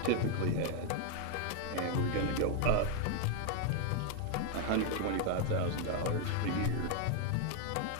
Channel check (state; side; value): different; both; correlation 0.00